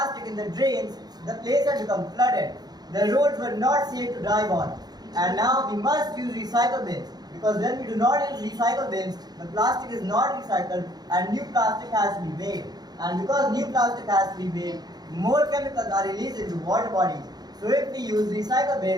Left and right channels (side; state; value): left; late; 0.19 ms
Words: in the drains, the place had become flooded. The roads were not safe to drive on. And now we must use recycle bins, because when we do not use recycle bins, the plastic is not recycled and new plastic has to be made. And because new plastic has to be made, more chemicals are released into water bodies. So if we use recycle